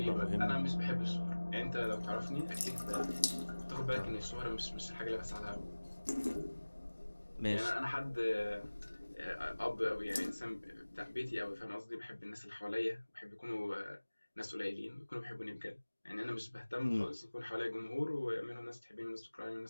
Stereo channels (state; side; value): inverted; both; correlation -1.00